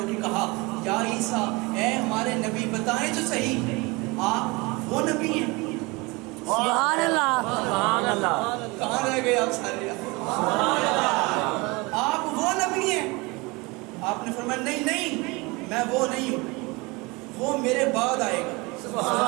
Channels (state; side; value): quieter; left; 25.3 dB